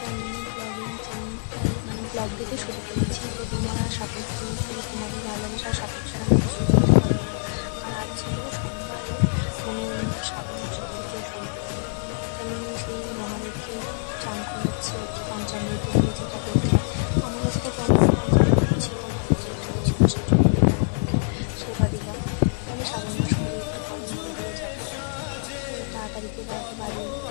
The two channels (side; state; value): right; silent; digital silence